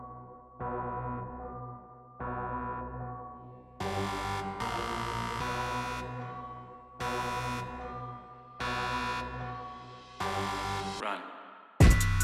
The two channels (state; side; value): identical; both; correlation 1.00